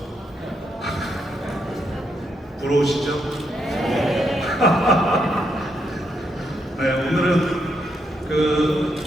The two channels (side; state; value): both; normal; correlation 0.79